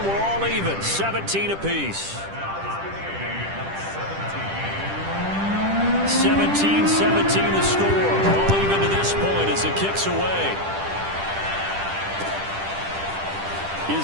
we're all even. 17 apiece. 17-17 the score. All even to this point as it kicks away.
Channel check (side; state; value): left; late; 10 ms